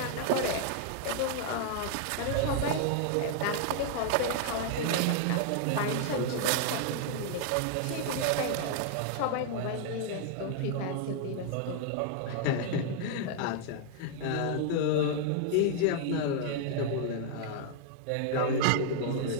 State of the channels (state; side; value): different; both; correlation 0.00